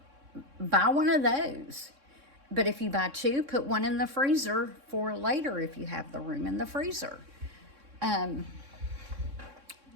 buy one of those. But if you buy two, put one in the freezer for later if you have the room in the freezer. Let's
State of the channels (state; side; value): late; left; 3.6 ms